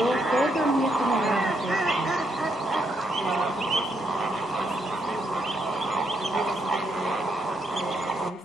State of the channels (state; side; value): normal; both; correlation 0.77